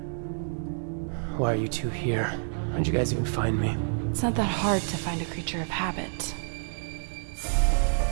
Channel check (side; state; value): left; silent; digital silence